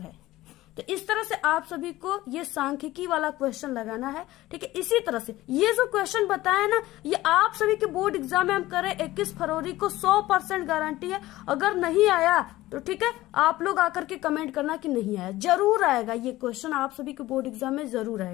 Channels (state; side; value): quieter; right; 16.9 dB